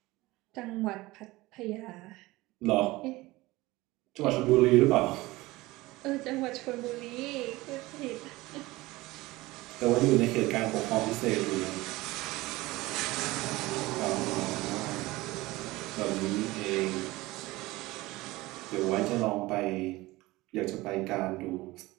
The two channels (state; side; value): quieter; left; 20.0 dB